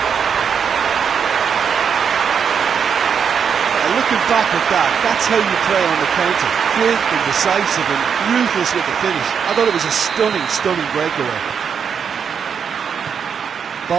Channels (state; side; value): quieter; left; 7.0 dB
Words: Looking back at that, that's how you play on the counter. Quick and decisive and ruthless with the finish. I thought it was a stunning breakaway.